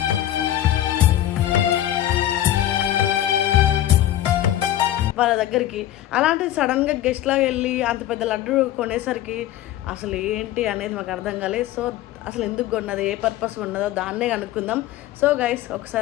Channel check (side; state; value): right; quieter; 12.9 dB